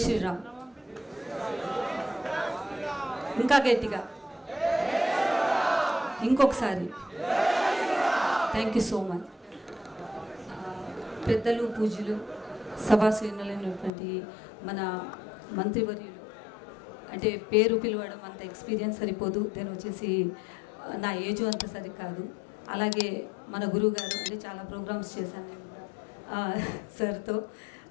శ్రీరామ్. ఇంకా గట్టిగా ఇంకొకసారి థ్యాంక్ యూ సో మచ్. పెద్దలు పూజలు సభాశ్రేణులైనటువంటి మన మంత్రివర్యులు అంటే పేరు పిలవడం అంత ఎక్స్పీరియన్స్ సరిపోదు, నేను వచ్చేసి నా ఏజ్ అంత సరికాదు. అలాగే మన గురువు గారు అంటే చాలా ప్రోగ్రామ్స్ చేశాను సార్తో,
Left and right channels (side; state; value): right; drops out; at 13.9 s